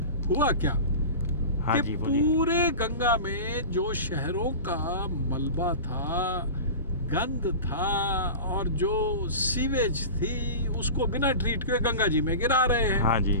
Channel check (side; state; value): both; inverted; correlation -0.31